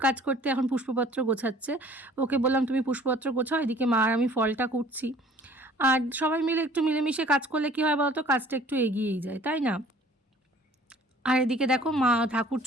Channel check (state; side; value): normal; both; correlation 0.52